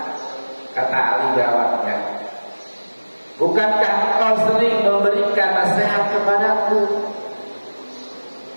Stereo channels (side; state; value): both; inverted; correlation -1.00